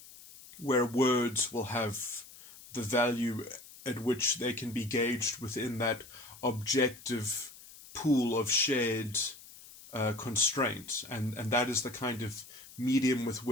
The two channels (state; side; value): noise; left; hiss, 19 dB below the sound